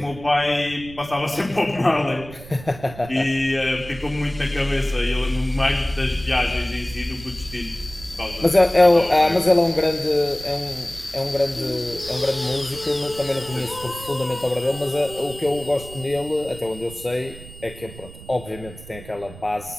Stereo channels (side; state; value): right; noise; rumble, 16 dB below the sound